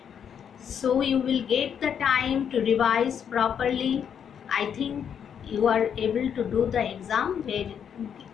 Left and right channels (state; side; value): quieter; right; 8.1 dB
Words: so you will get the time to revise properly. I think you are able to do the exam